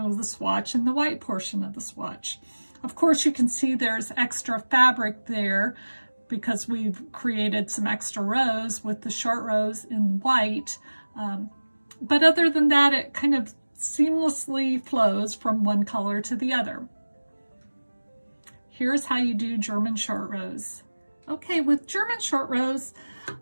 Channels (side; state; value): both; inverted; correlation -1.00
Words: the swatch and the white portion of the swatch. Of course, you can see there's extra fabric there because we've created some extra rows with the short rows in white. But other than that, it kind of seamlessly flows from one color to the other. Here's how you do German short rows. Okay, with German short rows,